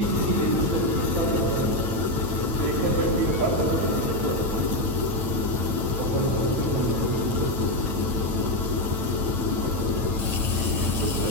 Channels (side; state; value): left; late; 9.0 ms